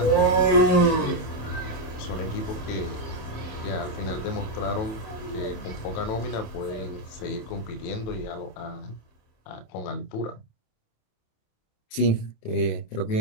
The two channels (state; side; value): late; right; 27 ms